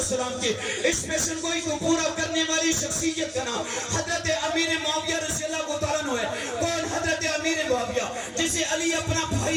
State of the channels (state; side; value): identical; both; correlation 1.00